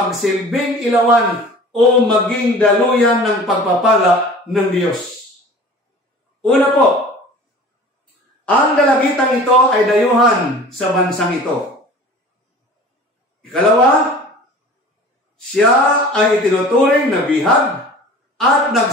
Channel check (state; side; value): normal; both; correlation 0.42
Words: ilawan o maging daluyan ng pagpapala ng Diyos. Una po, ang dalagitang ito ay dayuhan sa bansang ito. Ikalawa, siya ay itinuturing na bihag at